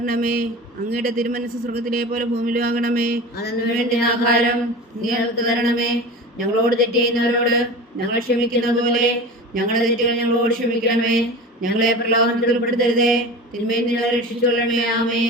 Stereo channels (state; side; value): normal; both; correlation 0.33